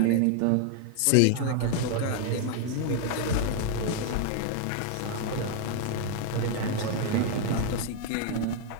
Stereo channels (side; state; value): both; different; correlation 0.00